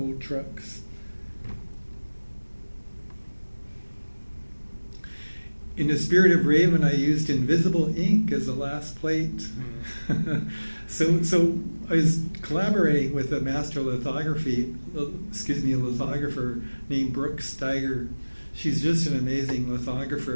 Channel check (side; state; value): both; inverted; correlation -1.00